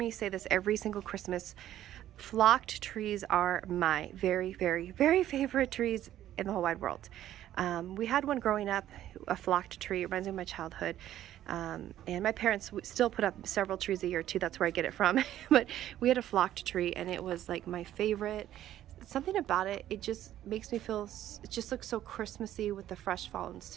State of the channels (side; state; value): left; quieter; 12.4 dB